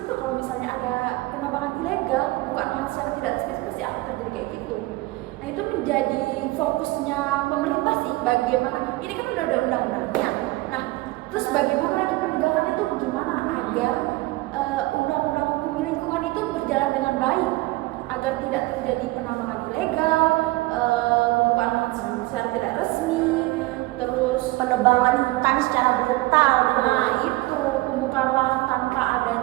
itu. Kalau misalnya ada penambangan ilegal, pembukaan lahan secara tidak resmi, pasti akan terjadi kayak gitu. Nah itu menjadi fokusnya pemerintah sih, bagaimana ini kan udah ada undang-undangnya. Nah terus bagaimana lagi penegakannya tuh gimana agar undang-undang hukum lingkungan itu berjalan dengan baik, agar tidak terjadi penambangan ilegal, pembukaan lahan secara tidak resmi, terus Penebangan hutan secara brutal. nah itu pembukaan lahan tanpa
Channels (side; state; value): left; quieter; 20.6 dB